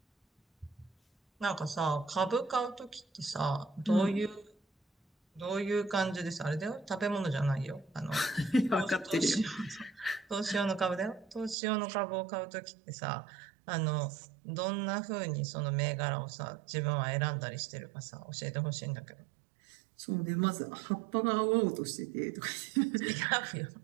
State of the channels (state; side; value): drops out; left; at 11.6 s